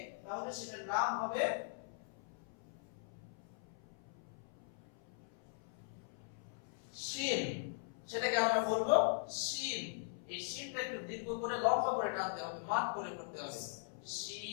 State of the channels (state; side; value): silent; right; 51 dB below the other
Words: তাহলে সেটার নাম হবে শিন। সেটাকে আমরা বলবো শিন। এই শিনটা একটু দীর্ঘ করে লম্বা করে টানতে হবে, মাত করে করতে হবে